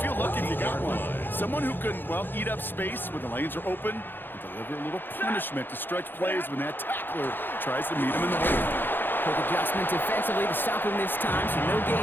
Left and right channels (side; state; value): right; late; 0.097 ms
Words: lucky if you got one. Someone who can, well, eat up space when the lanes are open and deliver a little punishment to stretch plays when that tackler tries to meet him in the hole. Quick adjustment defensively to stop him this time, so no